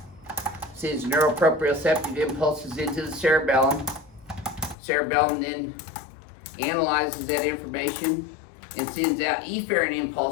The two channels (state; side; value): drops out; right; at 4.8 s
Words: sends neuroproprioceptive impulses into the cerebellum. Cerebellum then analyzes that information and sends out efferent